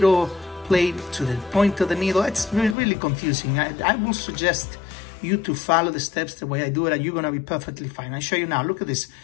plate to the point of the needle. It's really confusing. I will suggest you to follow the steps the way I do it, and you're gonna be perfectly fine. I'll show you now. Look at this.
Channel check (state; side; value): drops out; right; at 2.8 s